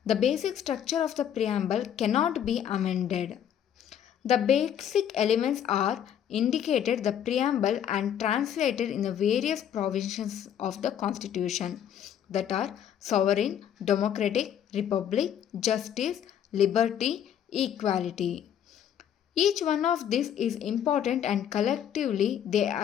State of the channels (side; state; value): right; quieter; 9.5 dB